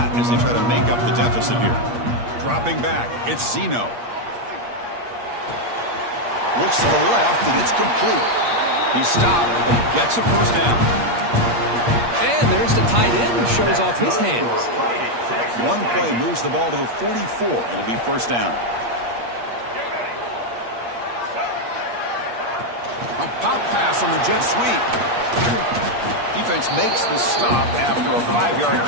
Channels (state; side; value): late; left; 8.5 ms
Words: as they try to make up the deficit here. Dropping back, it's Zeno. Looks to the left, and it's complete. He stopped, but he gets a first down. And there's the tight end who shows off his hands. One play moves the ball to the 44. It'll be first down. A pop pass on the jet sweep. Defense makes the stop after a 5-yard